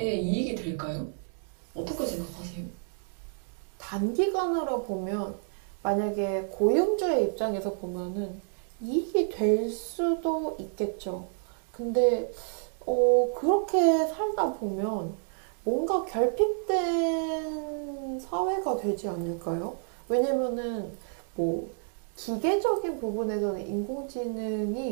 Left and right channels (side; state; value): left; silent; digital silence